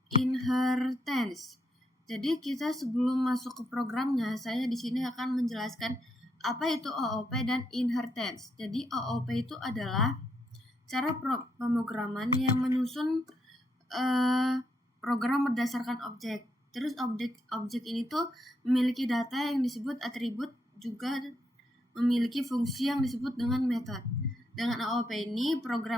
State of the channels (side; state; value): both; normal; correlation 0.78